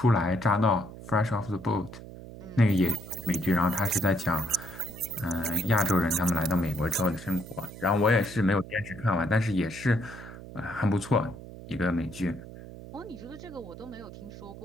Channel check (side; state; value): right; noise; hum, 14 dB below the sound